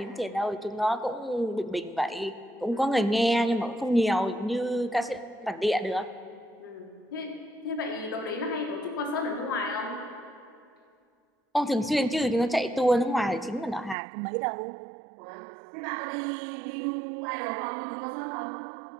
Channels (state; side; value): drops out; left; at 14.0 s